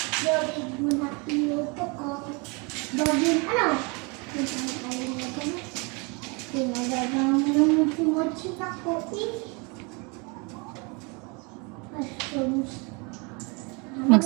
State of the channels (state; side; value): quieter; left; 30.9 dB